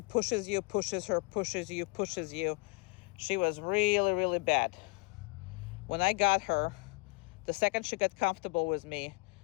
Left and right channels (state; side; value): quieter; right; 28.5 dB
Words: you, pushes her, pushes you, pushes you. She was really, really bad. When I got her, the second she got comfortable with me,